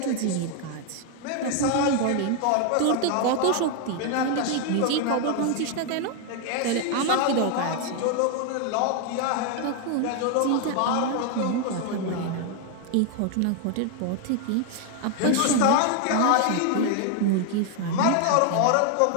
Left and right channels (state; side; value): different; both; correlation 0.00